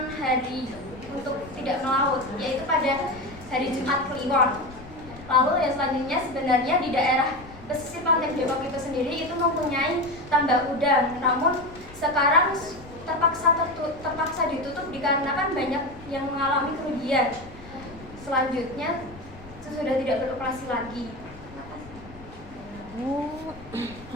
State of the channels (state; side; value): noise; left; rumble, 18 dB below the sound